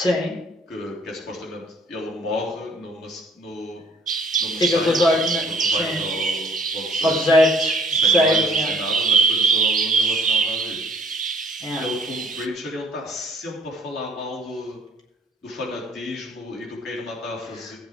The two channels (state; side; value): normal; both; correlation 0.56